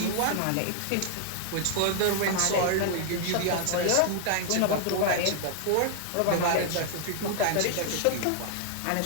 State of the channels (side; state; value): both; different; correlation 0.00